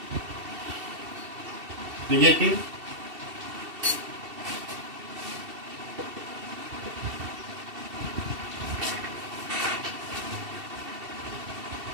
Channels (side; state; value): left; late; 2.7 ms